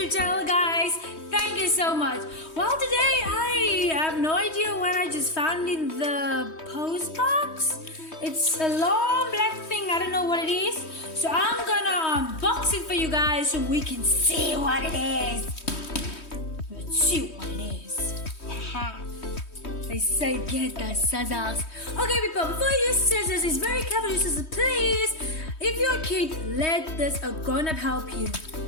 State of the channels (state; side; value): late; right; 3.2 ms